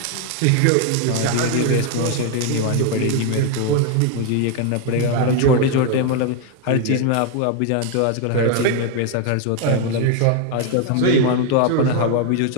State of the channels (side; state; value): both; different; correlation 0.01